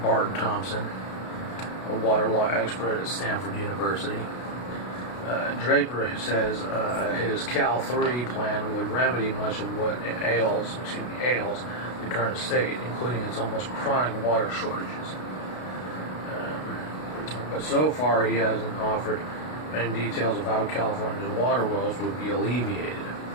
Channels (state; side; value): late; right; 33 ms